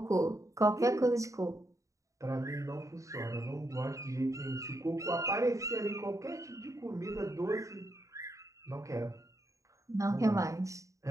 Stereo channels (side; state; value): left; late; 0.16 ms